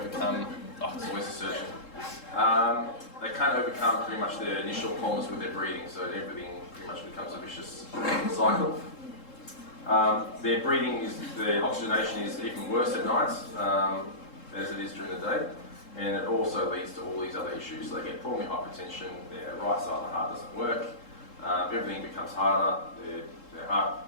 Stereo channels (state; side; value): late; right; 3.7 ms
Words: it's always a surgeon. They can't overcome pretty much their initial problems with their breathing, so everything pretty much becomes a vicious cycle. Their breathing their oxygenation is even worse at night as it is during the day, and it also leads to all these other issues. So they get pulmonary hypertension, their right side of the heart doesn't work, everything becomes harder, their